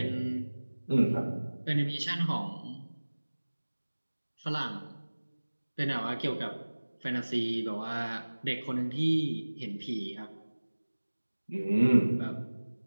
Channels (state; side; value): inverted; both; correlation -1.00